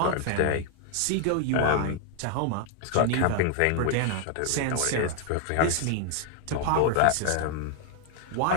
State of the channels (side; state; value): both; different; correlation 0.00